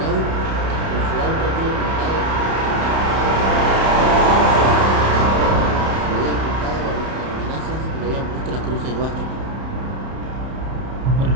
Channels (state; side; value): late; left; 31 ms